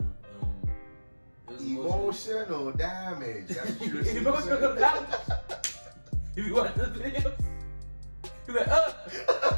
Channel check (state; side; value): inverted; both; correlation -1.00